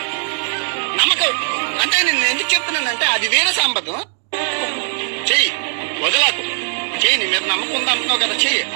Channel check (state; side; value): silent; left; digital silence